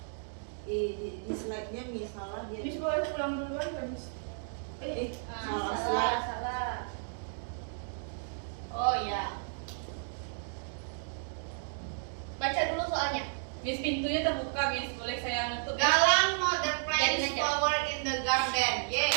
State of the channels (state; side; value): silent; left; digital silence